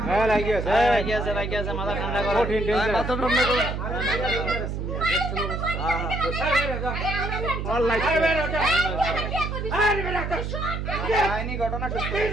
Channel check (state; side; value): noise; right; hum, 4 dB below the sound